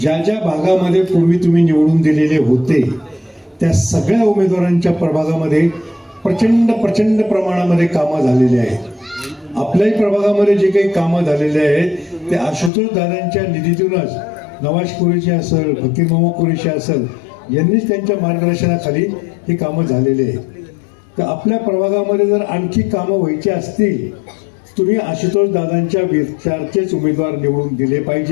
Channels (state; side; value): drops out; right; at 12.7 s